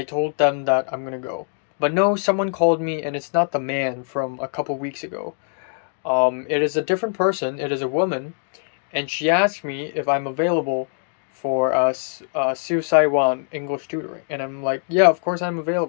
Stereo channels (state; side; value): silent; right; 64 dB below the other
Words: told them that I'm gonna go. But no, someone called me, and it's not the man from a couple weeks ago. It is a different person. It is a woman, and she asked me if I'm available for Su Saiwan English tutoring, and I'm like, yeah, of course I'm